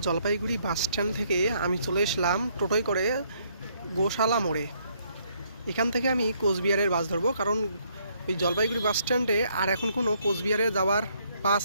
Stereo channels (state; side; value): inverted; both; correlation -0.69